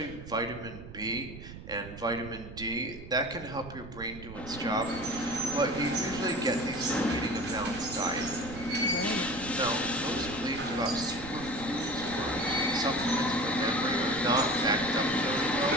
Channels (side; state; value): right; noise; rumble, 13 dB below the sound